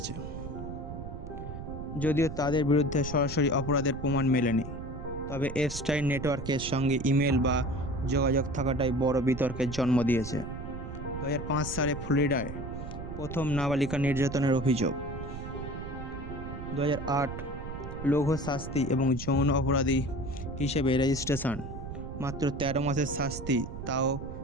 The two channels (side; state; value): right; noise; rumble, 9 dB below the sound